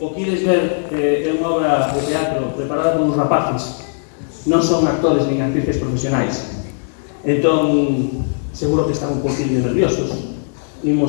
O que ides ver é unha obra de teatro preparada por uns rapaces. Non son actores nin actrices profesionais. Entón, seguro que están un poquinho nerviosos.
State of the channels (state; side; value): silent; right; digital silence